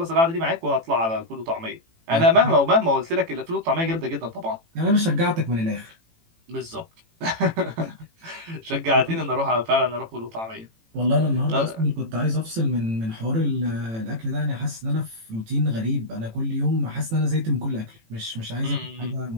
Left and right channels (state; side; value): late; left; 18 ms